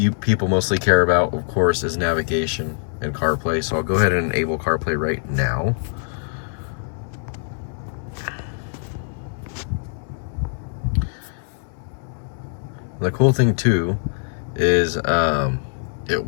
people mostly care about, of course, is navigation and CarPlay. So I'll go ahead and enable CarPlay right now. The cool thing too is it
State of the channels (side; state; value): right; silent; 64 dB below the other